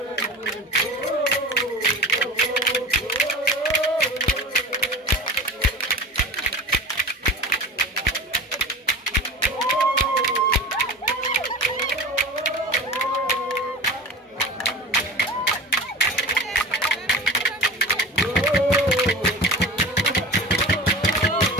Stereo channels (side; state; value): both; normal; correlation 0.34